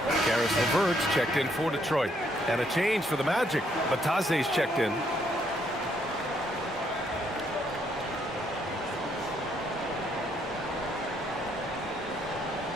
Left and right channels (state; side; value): normal; both; correlation 0.71